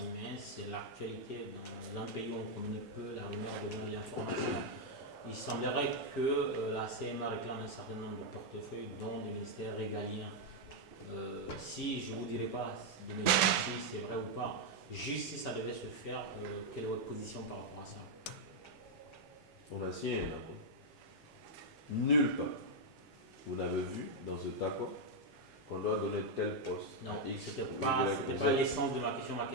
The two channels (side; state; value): both; normal; correlation -0.01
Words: mais c'est l'actualité. Dans un pays où on communique peu, la rumeur devient l'information. Il semblerait que la CMA réclame un certain nombre de portefeuilles, dont du ministère régalien. Si je ne vous dirai pas si c'est vrai ou pas, juste si ça devait se faire, quelle est votre position par rapport à ça? On a signé un accord. Nulle part, vous n'avez vu dans cet accord qu'on doit donner tel poste. Non, ce n'était pas l'essence de ma question. Ma